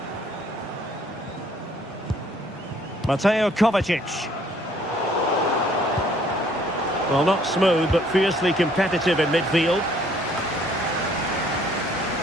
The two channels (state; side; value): normal; both; correlation 0.61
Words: Mateo Kovacic. Well, not smooth, but fiercely competitive in midfield.